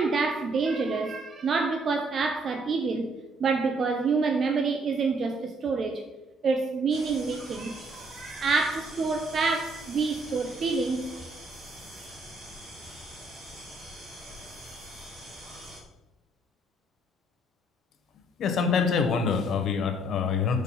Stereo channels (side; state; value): both; normal; correlation 0.66